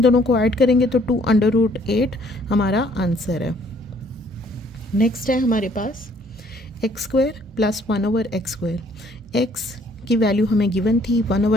दोनों को ऐड करेंगे तो 2 अंडर रूट 8 हमारा आंसर है। नेक्स्ट है हमारे पास X square plus 1/x square. X की वैल्यू हमें गिवन थी,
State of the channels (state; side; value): normal; both; correlation 0.62